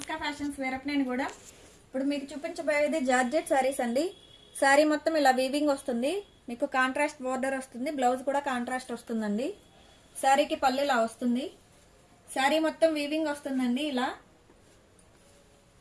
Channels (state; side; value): identical; both; correlation 1.00